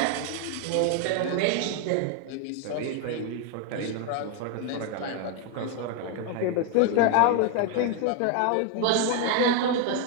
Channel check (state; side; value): different; both; correlation 0.01